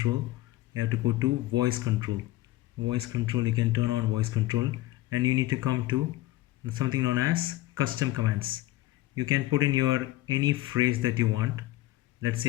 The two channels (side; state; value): right; quieter; 16.7 dB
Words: You have to go to voice control. Voice control, you can turn on voice control, and you need to come to something known as custom commands. You can put in your any phrase that you want. Let's say